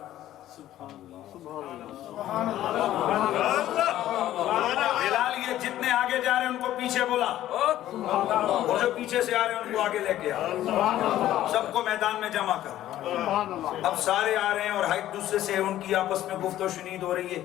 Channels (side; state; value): right; quieter; 13.3 dB